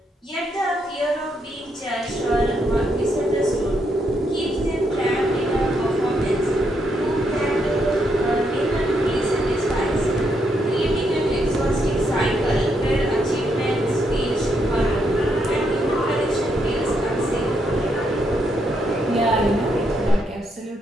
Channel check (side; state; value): both; normal; correlation 0.77